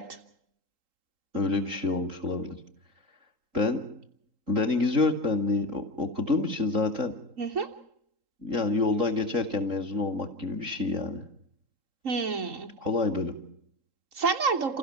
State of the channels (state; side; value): late; left; 3.8 ms